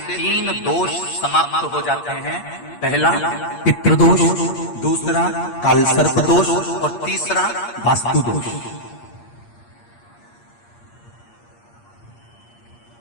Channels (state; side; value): late; right; 8.5 ms